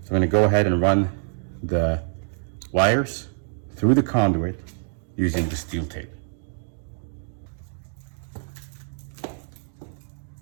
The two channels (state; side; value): silent; left; digital silence